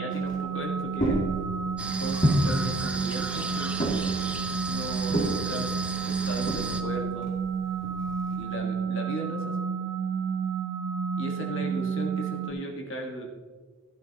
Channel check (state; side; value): quieter; left; 3.4 dB